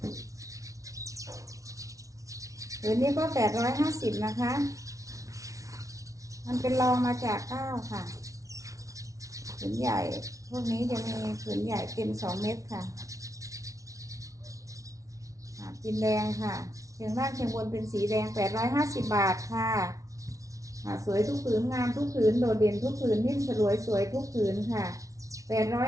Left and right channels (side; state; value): left; late; 0.16 ms